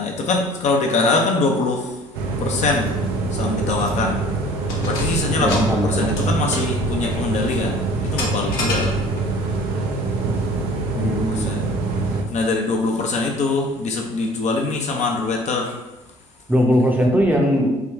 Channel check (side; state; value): both; normal; correlation 0.51